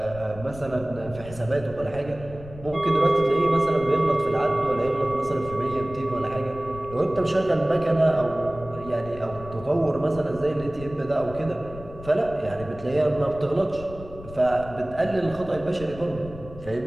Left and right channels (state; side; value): noise; left; rumble, 15 dB below the sound